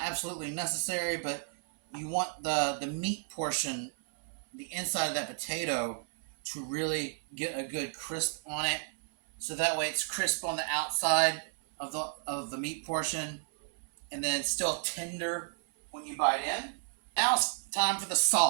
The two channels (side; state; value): left; silent; 56 dB below the other